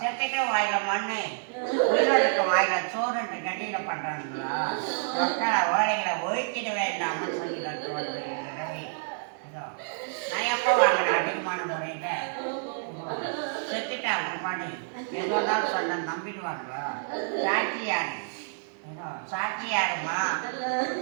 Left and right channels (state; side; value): silent; left; digital silence